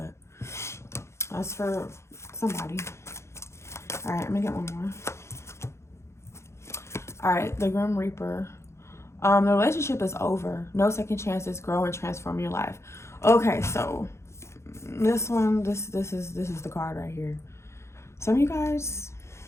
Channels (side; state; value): right; late; 0.13 ms